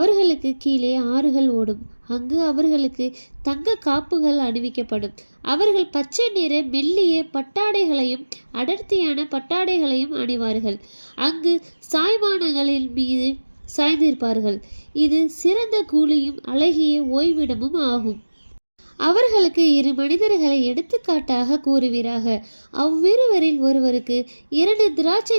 கீழே ஆறுகள் ஓடும். அங்கு அவர்களுக்கு தங்க காப்புகள் அணிவிக்கப்படும். அவர்கள் பச்சை நிற மெல்லிய பட்டாடைகளையும் அடர்த்தியான பட்டாடைகளையும் அணிவார்கள். அங்கு சாய்வானங்களின் மீது சாய்ந்திருப்பார்கள். இது சிறந்த கூலியும் அழகிய ஓய்விடமும் ஆகும். அவர்களுக்கு இரு மனிதர்களை எடுத்துக்காட்டாக கூறுவீராக. அவ்விருவரில் ஒருவருக்கு 2 திராட்சை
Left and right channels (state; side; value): inverted; both; correlation -1.00